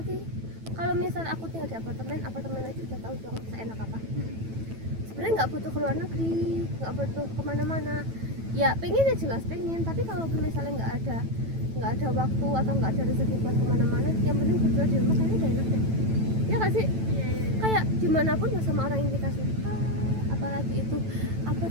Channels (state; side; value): late; left; 9.1 ms